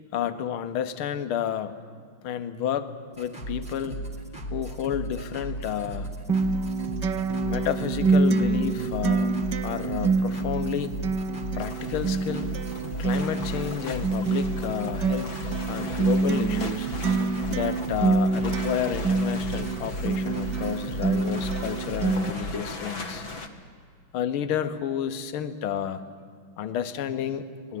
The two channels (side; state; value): right; late; 6.1 ms